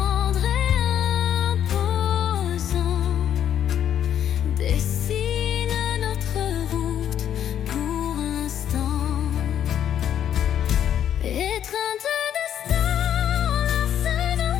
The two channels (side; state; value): right; quieter; 9.9 dB